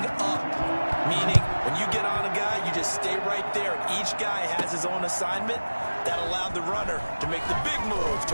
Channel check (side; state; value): both; inverted; correlation -1.00